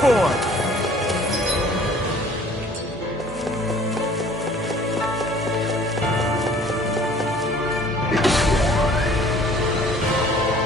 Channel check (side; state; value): both; normal; correlation 0.53